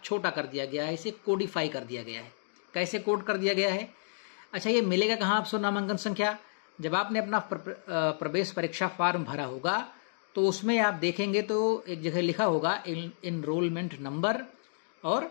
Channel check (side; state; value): right; silent; digital silence